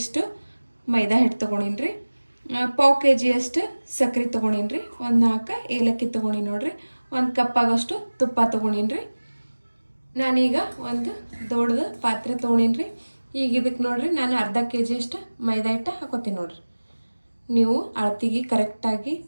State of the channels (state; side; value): inverted; both; correlation -1.00